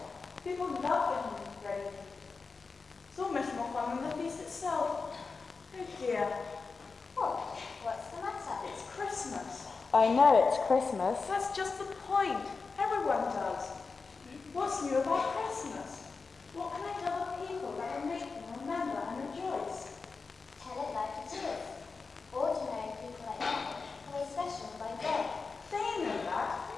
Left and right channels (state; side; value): quieter; right; 4.5 dB